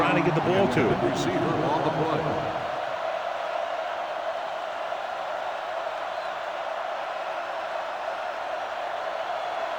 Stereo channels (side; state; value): both; identical; correlation 1.00